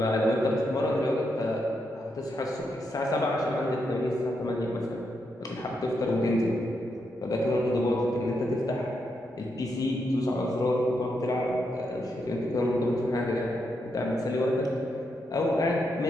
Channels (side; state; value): both; normal; correlation 0.82